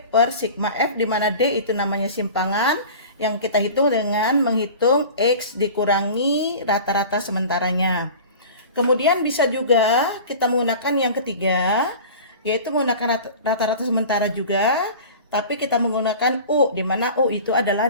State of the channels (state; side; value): inverted; both; correlation -0.38